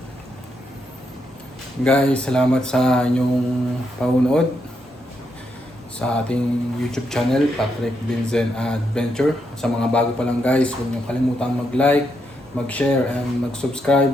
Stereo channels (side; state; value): both; normal; correlation 0.80